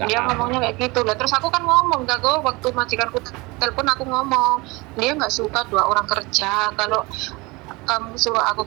Dia ngomongnya kayak gitu lah. Terus aku kan ngomong kok waktu majikanku telepon, aku ngomong dia nggak suka 2 orang kerja. Kalau kamu suruh aku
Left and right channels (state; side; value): quieter; left; 24.4 dB